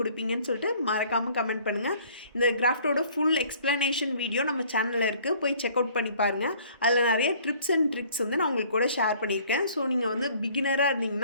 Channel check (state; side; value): inverted; both; correlation -0.55